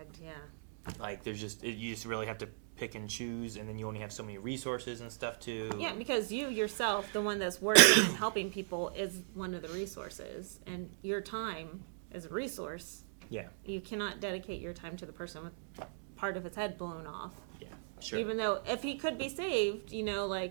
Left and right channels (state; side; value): silent; left; digital silence